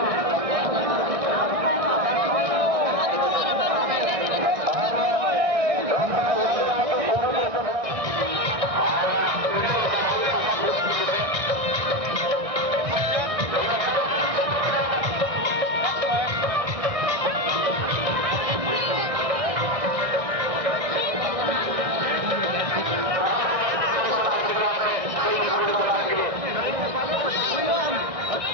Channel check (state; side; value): late; left; 1.6 ms